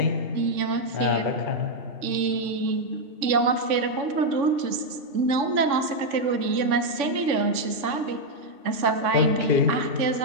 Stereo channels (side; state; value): left; late; 3.5 ms